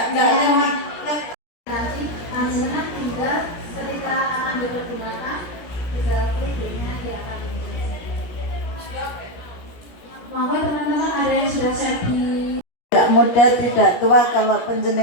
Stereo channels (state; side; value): late; right; 17 ms